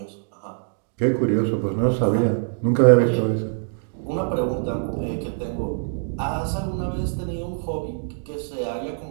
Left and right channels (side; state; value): left; silent; digital silence